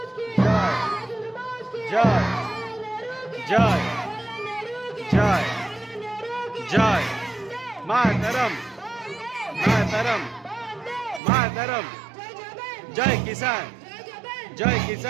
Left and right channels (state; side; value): drops out; left; at 11.2 s